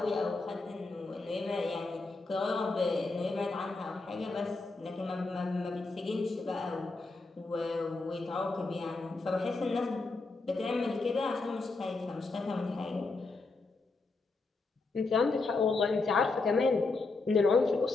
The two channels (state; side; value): quieter; right; 3.7 dB